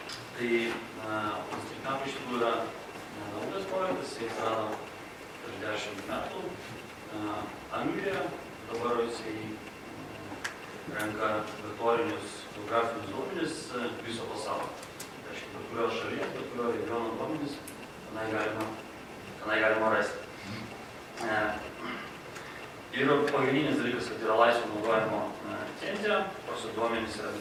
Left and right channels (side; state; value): both; identical; correlation 1.00